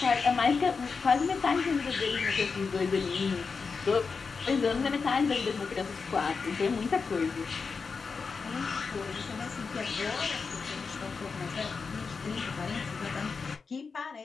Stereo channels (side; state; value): right; quieter; 5.0 dB